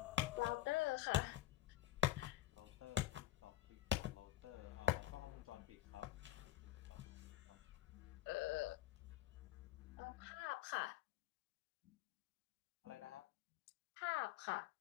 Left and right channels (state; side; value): quieter; right; 14.3 dB